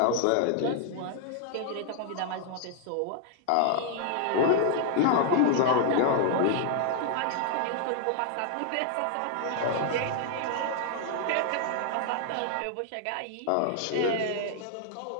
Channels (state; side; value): different; both; correlation -0.01